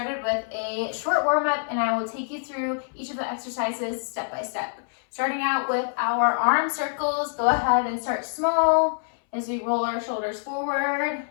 with a short warm-up, and I will take you through each of the exercises step by step. Starting out with our arm circles, go ahead and start small as we roll our shoulders forward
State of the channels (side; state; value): right; silent; 61 dB below the other